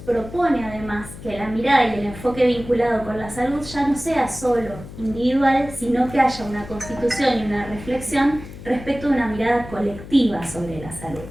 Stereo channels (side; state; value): left; noise; hum, 14 dB below the sound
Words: propone además que la mirada y el enfoque vinculado con la salud ya no sea solo individual, sino que haya una constitución y una reflexión respecto de una mirada colectiva sobre la salud,